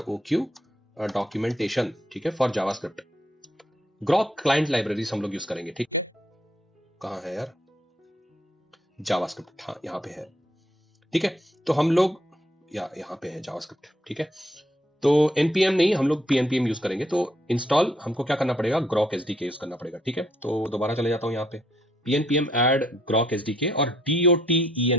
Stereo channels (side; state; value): both; normal; correlation 0.71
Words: डॉक्यूमेंटेशन, ठीक है, for JavaScript. Grok client libraries हम लोग यूज करेंगे, ठीक। कहां है यार जावास्क्रिप्ट, हाँ यहाँ पे है, ठीक है। तो हम लोग यहाँ पे है जावास्क्रिप्ट, ठीक है। तो npm नहीं, हम लोग pnpm यूज करेंगे। तो इंस्टॉल हमको क्या करना पड़ेगा, ग्रॉक SDK यूज करना पड़ेगा, ठीक है। तो दोबारा चले जाता हूं यहाँ पे pnpm ऐड ग्रॉक SDK और